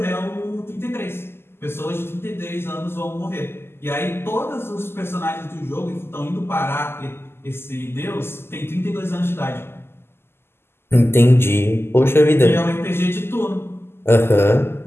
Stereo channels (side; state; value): right; late; 0.12 ms